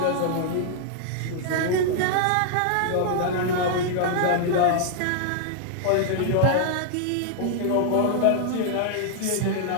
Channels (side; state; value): both; different; correlation -0.01